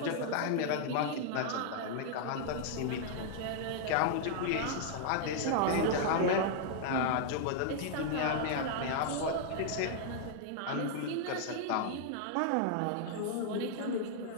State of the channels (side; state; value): both; different; correlation -0.01